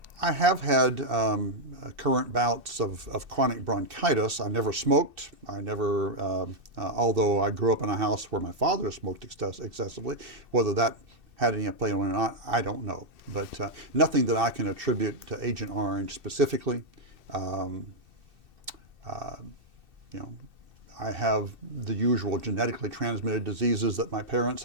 I have had current bouts of chronic bronchitis. I never smoked. I never, although I grew up in a house where my father smoked excessively, whether that had any play on it or not, I don't know. But nothing that I can attribute to Agent Orange specifically. I have the usual genetically transmitted diseases that my parents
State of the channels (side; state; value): left; late; 2.6 ms